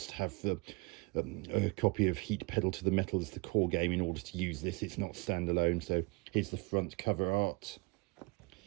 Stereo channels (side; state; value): left; quieter; 27.9 dB